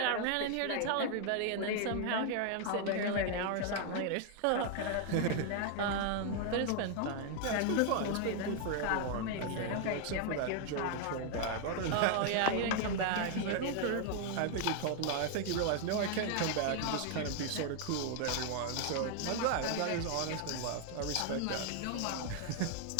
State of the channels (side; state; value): both; different; correlation 0.00